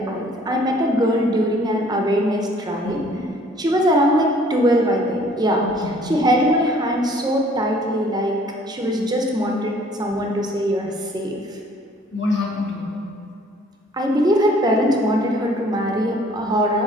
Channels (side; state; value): both; normal; correlation 0.57